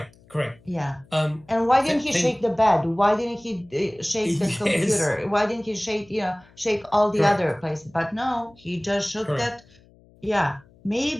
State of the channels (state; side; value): noise; left; hum, 28 dB below the sound